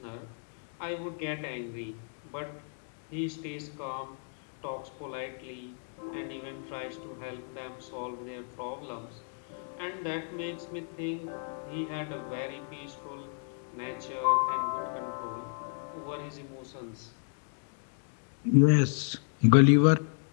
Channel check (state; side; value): silent; right; 56 dB below the other